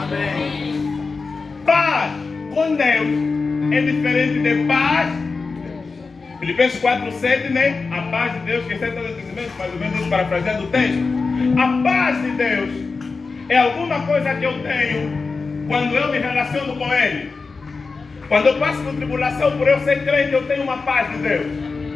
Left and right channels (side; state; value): right; quieter; 4.3 dB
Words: Paz com Deus é diferente de paz. Filipenses 4:7, né? A paz de Deus que excede todos os entendimentos, mais ou menos isso, parafraseando o texto. A paz de Deus é alguma coisa que eu tenho quando eu me relaciono com Ele. Quando eu passo por tribulação, por eu ser crente, eu tenho uma paz de Deus.